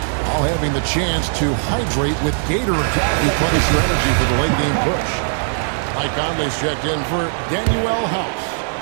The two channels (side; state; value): left; silent; digital silence